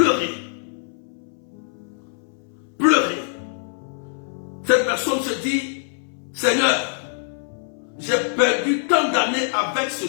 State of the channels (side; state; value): right; silent; 61 dB below the other